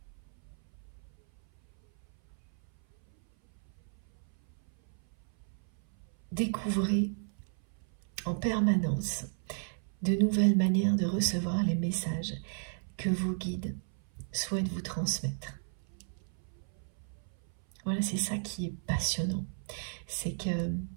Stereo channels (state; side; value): silent; left; 55 dB below the other